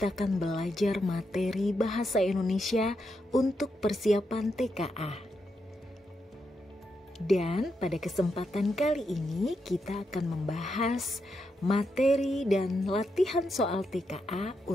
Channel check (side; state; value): both; normal; correlation 0.83